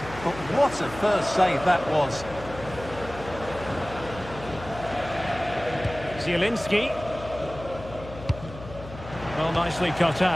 but what a first save that was. Zielinski. Well, nicely cut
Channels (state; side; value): noise; left; hum, 14 dB below the sound